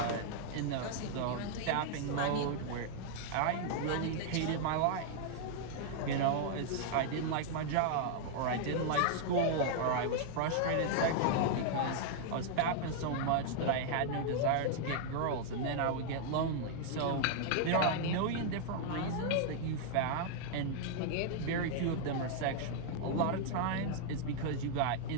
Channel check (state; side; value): different; both; correlation -0.01